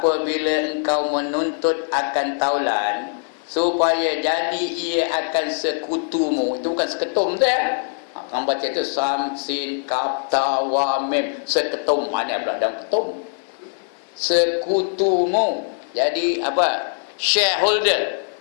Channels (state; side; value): silent; right; digital silence